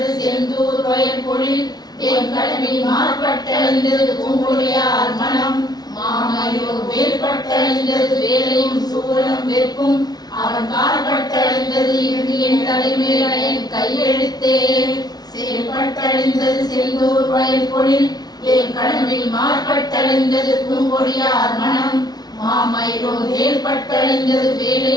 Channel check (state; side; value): late; right; 0.19 ms